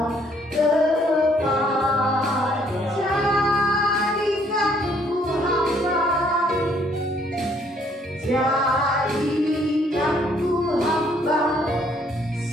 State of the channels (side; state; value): both; normal; correlation 0.65